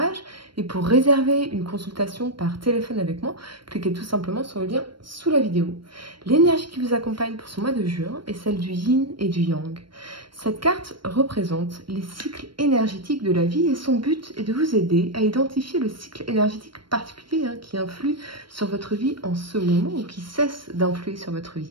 Et pour réserver une consultation par téléphone avec moi, cliquez tout simplement sur le lien sous la vidéo. L'énergie qui vous accompagne pour ce mois de juin est celle du yin et du yang. Cette carte représente les cycles énergétiques de la vie et son but est de vous aider à identifier le cycle énergétique particulier qui influe sur votre vie en ce moment ou qui cesse d'influer sur votre vie.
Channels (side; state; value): left; late; 0.73 ms